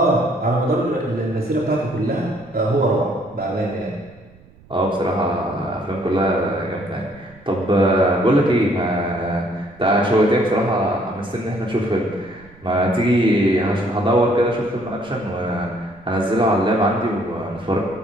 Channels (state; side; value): noise; right; rumble, 26 dB below the sound